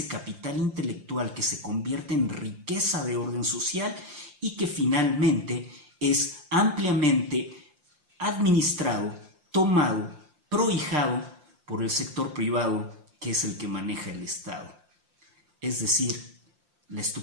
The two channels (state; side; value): late; left; 5.7 ms